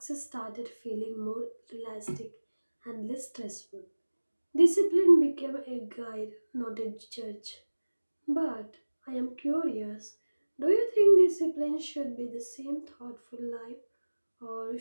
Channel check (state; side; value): inverted; both; correlation -1.00